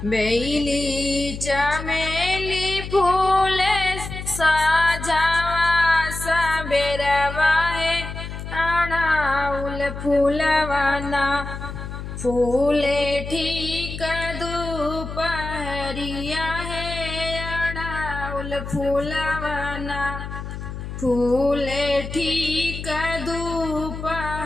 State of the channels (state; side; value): noise; left; hum, 8 dB below the sound